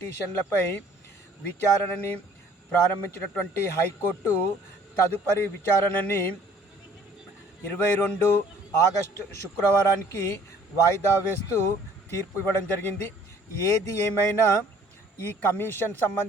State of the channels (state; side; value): normal; both; correlation 0.55